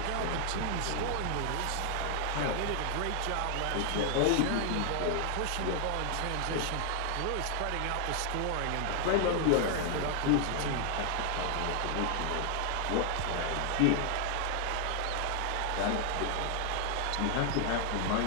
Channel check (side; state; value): both; different; correlation 0.00